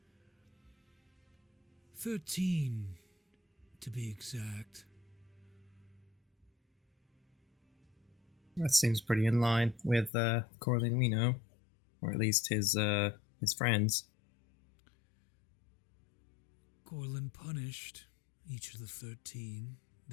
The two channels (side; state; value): right; drops out; at 10.1 s